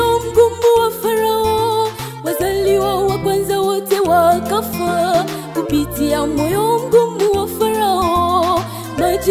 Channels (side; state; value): both; identical; correlation 1.00